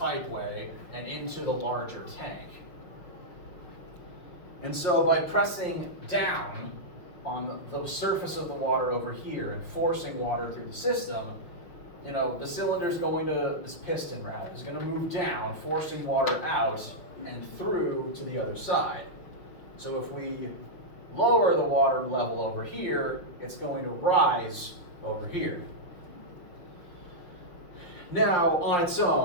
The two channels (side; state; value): right; late; 6.0 ms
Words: and into the larger tank. And so by pressing down on the surface of the water over here and forcing water through the system, you know, the cylinder's going to, this piston rather, is going to move down, forcing water out and through to the other side. So if we lower the water level over here, it's going to rise over here. Now, on its